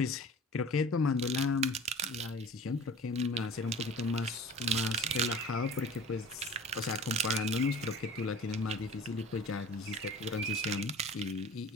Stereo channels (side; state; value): both; normal; correlation 0.42